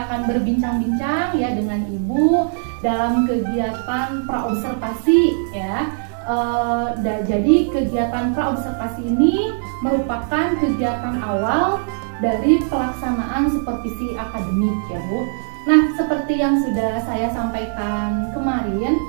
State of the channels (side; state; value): left; silent; digital silence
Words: akan berbincang-bincang ya dengan Ibu dalam kegiatan praobservasi ya. Jadi kegiatan praobservasi ini merupakan kegiatan awal dari pelaksanaan supervisi akademik ya Bu. Nah, seperti yang sudah saya sampaikan kemarin